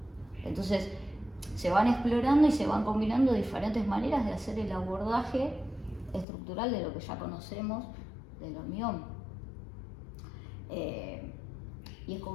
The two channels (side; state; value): right; drops out; at 6.2 s